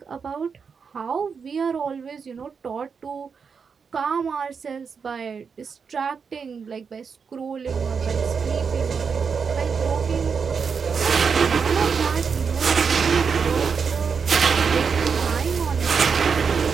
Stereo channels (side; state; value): left; quieter; 5.9 dB